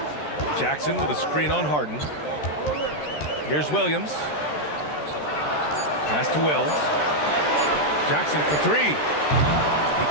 Jackson with a screen on Harden. Here's Williams. Pass to Wells. Jackson for three. He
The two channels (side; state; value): right; late; 13 ms